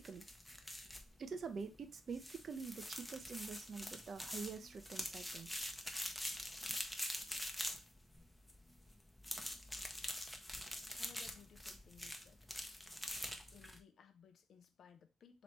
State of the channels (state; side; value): normal; both; correlation 0.88